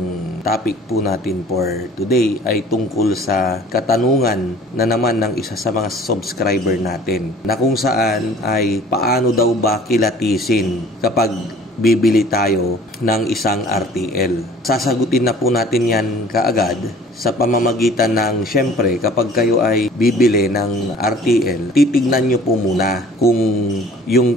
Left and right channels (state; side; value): normal; both; correlation 0.50